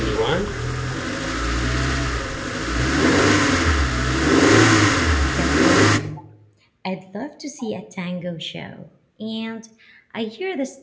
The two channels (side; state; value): both; identical; correlation 1.00